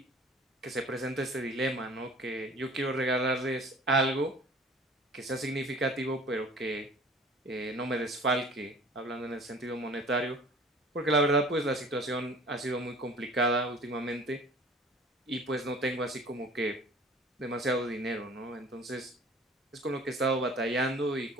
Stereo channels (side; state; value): both; normal; correlation 0.46